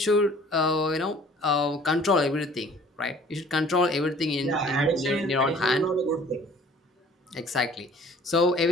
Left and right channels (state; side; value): normal; both; correlation 0.52